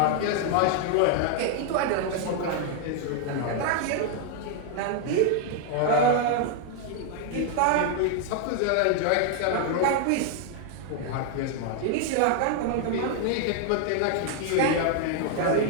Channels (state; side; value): different; both; correlation 0.00